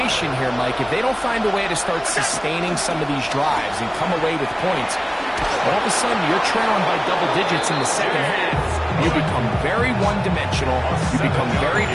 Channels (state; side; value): identical; both; correlation 1.00